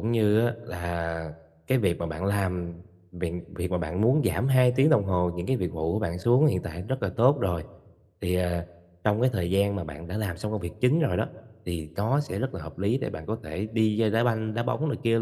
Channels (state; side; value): identical; both; correlation 1.00